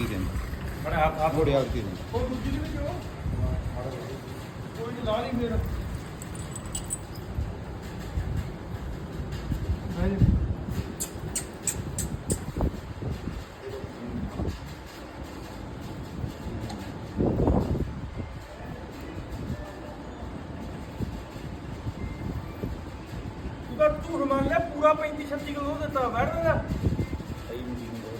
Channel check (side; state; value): both; identical; correlation 1.00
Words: ಇದೆ ಅಂತ, ನೋಡಿ ಯಾವ ರೀತಿ ಇದೆ. ਝੂਠ ਮੰਨ ਲਿਆ ਪੂਰਾ 35-36 ਕਿਲੋ ਦਿੱਤਾ ਬੈਠ ਦਾ